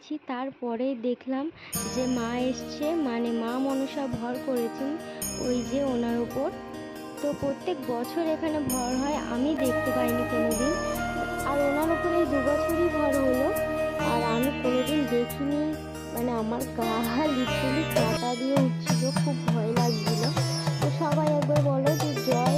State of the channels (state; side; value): identical; both; correlation 1.00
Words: তারপরেই দেখলাম যে মা এসছে, মানে মা মনসা ভর করেছেন ওই যে ওনার ওপর। তো প্রত্যেক বছর এখানে ভর হয়, আমি দেখতে পাইনি কোনোদিন, আর ওনার উপরে এই 2 বছরই ভর হলো, আর আমি কোনোদিন দেখিনি। মানে আমার গা লিটারালি কাঁটা দিয়ে উঠছিল, খুব ভয় লাগছিল। তো সবাই একবার বলো যে জয়